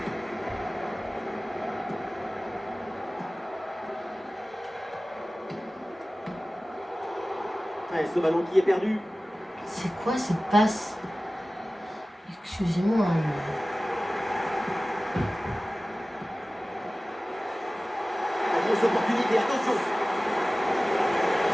Ouais, ce ballon qui est perdu. C'est quoi cette passe? Excusez-moi. La grosse opportunité, attention.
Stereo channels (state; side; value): normal; both; correlation 0.97